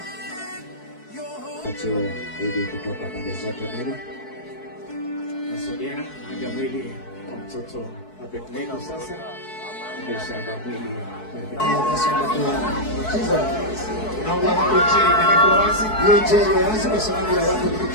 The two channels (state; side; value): late; right; 4.6 ms